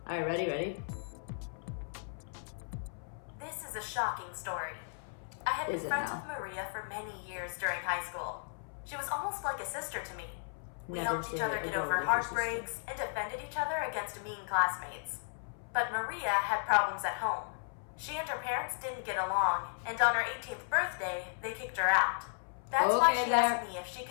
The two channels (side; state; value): right; silent; 54 dB below the other